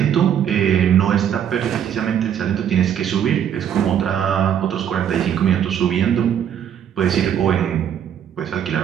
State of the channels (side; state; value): left; quieter; 9.2 dB